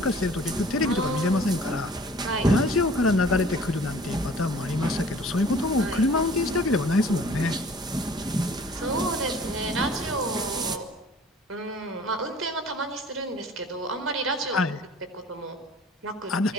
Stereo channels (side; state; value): both; normal; correlation 0.50